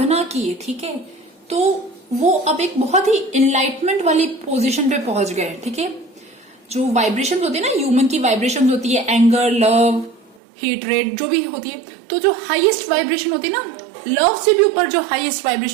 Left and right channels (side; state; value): left; drops out; at 10.4 s